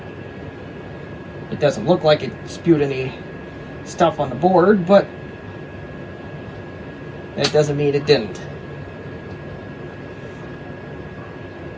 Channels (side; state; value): both; identical; correlation 1.00